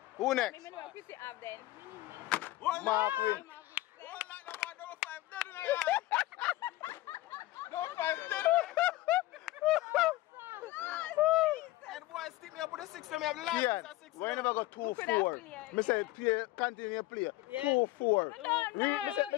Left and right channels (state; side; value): quieter; right; 17.6 dB